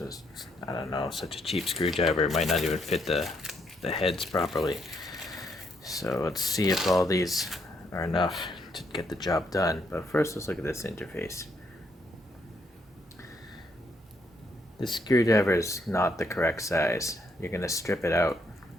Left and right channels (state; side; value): normal; both; correlation 0.74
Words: I don't know, such a cheap screwdriver. It might not even fit the heads properly. So let's see if all these are enough to get the job done. But first, let's look at this interface. This screwdriver is not the correct size. You're going to strip it out.